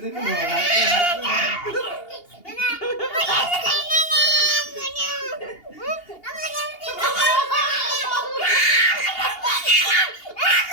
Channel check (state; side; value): late; right; 2.8 ms